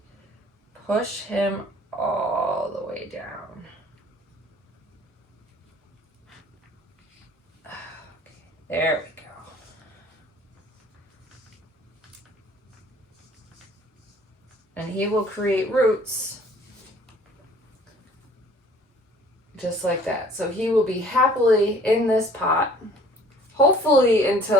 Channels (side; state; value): both; normal; correlation 0.53